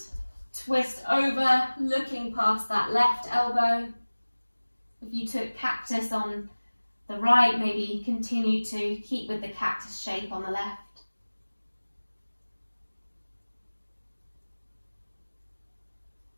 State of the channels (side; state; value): both; inverted; correlation -1.00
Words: Twist over, looking past that left elbow. If you took cactus on the right, maybe continue to keep with the cactus shape on the left.